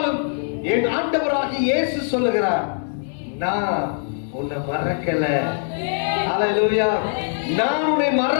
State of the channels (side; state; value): right; silent; 64 dB below the other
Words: என் ஆண்டவராகிய இயேசு சொல்லுகிறார், நான் உன்னை மறக்கல. அல்லேலூயா. நான் உன்னை